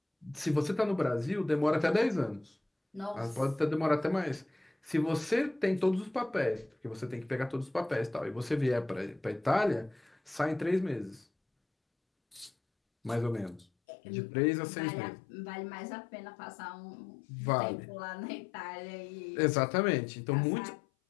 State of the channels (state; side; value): drops out; right; at 13.7 s